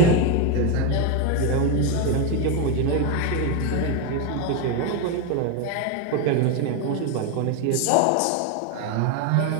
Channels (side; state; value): both; different; correlation 0.02